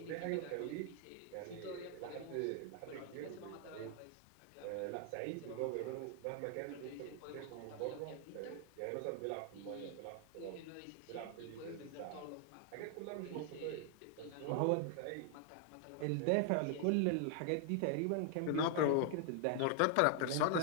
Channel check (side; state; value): both; different; correlation 0.00